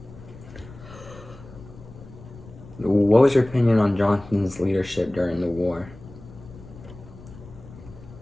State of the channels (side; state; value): left; noise; rumble, 18 dB below the sound